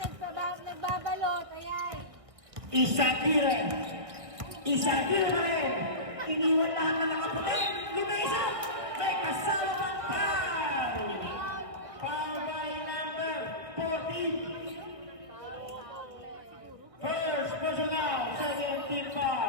Nagbabalot, ayan. Isagire. Isagire pa rin. Iniwan lahat na nakaputi. Lumesa. May kasama ng foul. Foul by number 14. First personal. Second team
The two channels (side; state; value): left; late; 1.7 ms